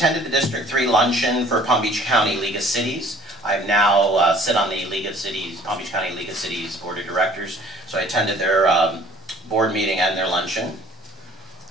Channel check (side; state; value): both; normal; correlation 0.53